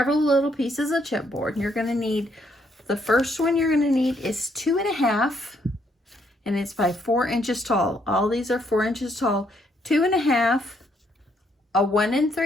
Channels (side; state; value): both; normal; correlation 0.72